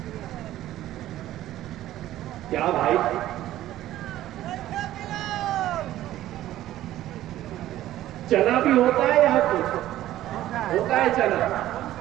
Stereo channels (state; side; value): quieter; left; 13.9 dB